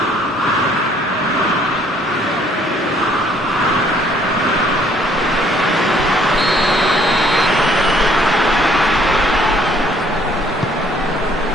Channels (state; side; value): normal; both; correlation 0.62